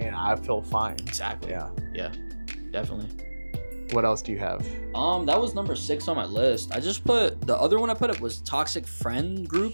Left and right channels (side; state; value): both; inverted; correlation -1.00